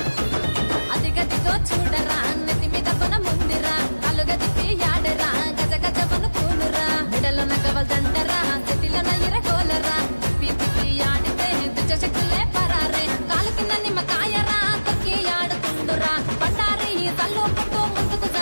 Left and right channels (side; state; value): both; inverted; correlation -1.00